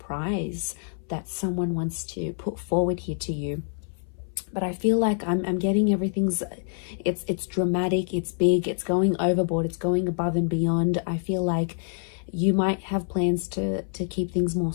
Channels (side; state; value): right; silent; 61 dB below the other